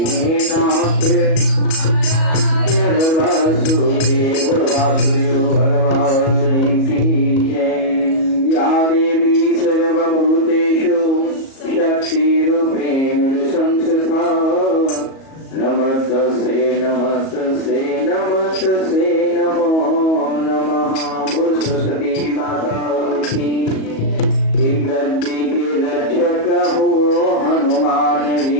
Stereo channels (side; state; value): right; late; 37 ms